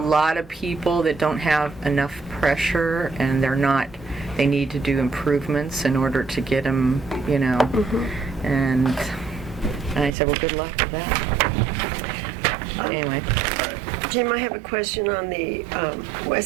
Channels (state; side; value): drops out; left; at 10.1 s